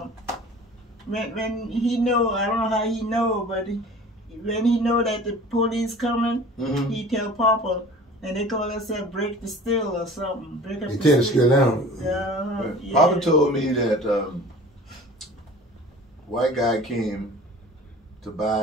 when he know, I don't know how he know, but when he know that the police coming, he tell Papa, and they call themselves break the still or something. Break up They the tell the still down. Yeah. Papa told me that white guy came to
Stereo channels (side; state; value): both; normal; correlation 0.43